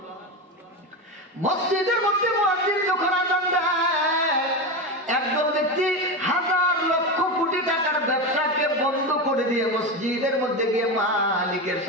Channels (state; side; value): normal; both; correlation 0.18